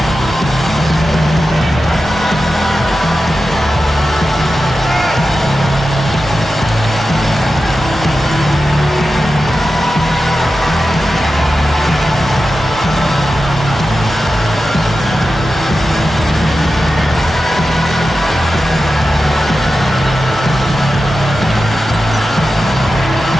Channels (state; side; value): normal; both; correlation 0.92